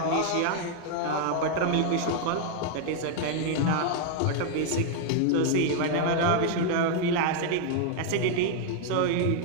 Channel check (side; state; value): both; different; correlation 0.00